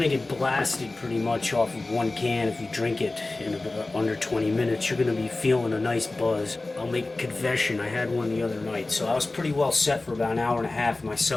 to get blasted pretty much off of one can if you drink it in about under 20 minutes. You're going to be feeling a nice buzz. I'll make a confession, I had one the other night, so I was pretty well set for about an hour and a half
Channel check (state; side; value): quieter; right; 3.1 dB